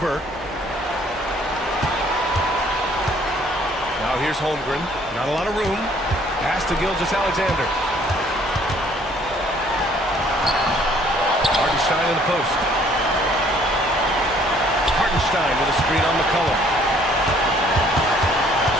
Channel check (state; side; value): normal; both; correlation 0.60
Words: Now here's Holmgren. Not a lot of room. Pass to Gilgeous-Alexander. Hartenstein in the post. Hartenstein with a screen on McCollum.